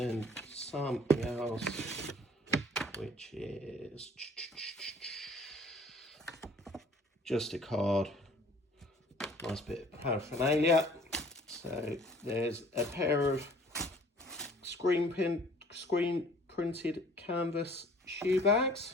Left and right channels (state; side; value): normal; both; correlation 0.53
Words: something else, which is just a card, nice bit of paraphernalia. So there's a pair of screen printed canvas shoe